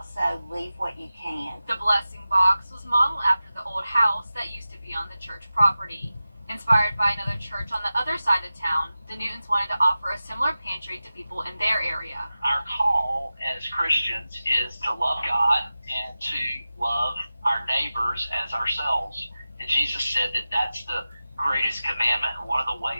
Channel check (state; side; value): inverted; both; correlation -0.95